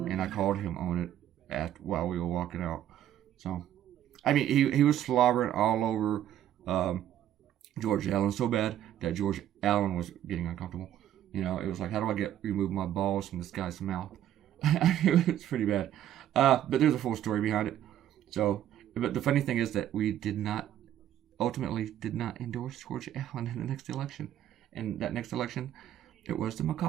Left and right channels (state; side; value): quieter; left; 11.6 dB